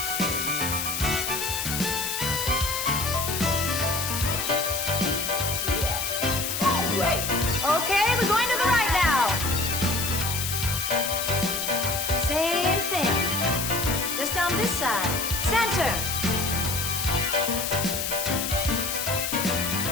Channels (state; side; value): noise; left; hiss, 2 dB below the sound